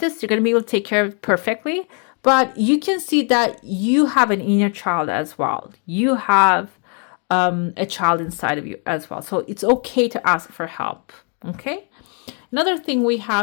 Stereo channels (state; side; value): quieter; right; 38.9 dB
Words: You're gonna be able to take care of it perfectly. But you can see that you have an inner child as well. You have a child inside of you as well. So it's okay to ask for help. Okay. Another thing we